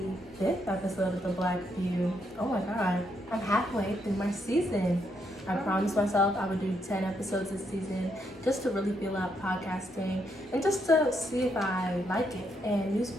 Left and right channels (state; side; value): normal; both; correlation 0.77